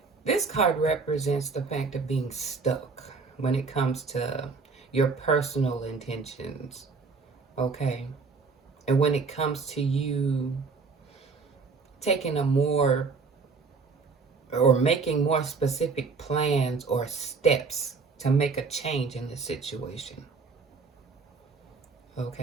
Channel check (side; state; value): left; quieter; 4.6 dB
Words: this card represents the fact of being stuck when it comes to your personal intentions, okay? And when it comes to you taking making more specific plans or steps to make a change in the situation,